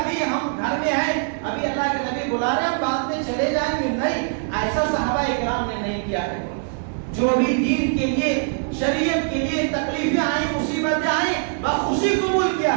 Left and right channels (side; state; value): left; silent; 61 dB below the other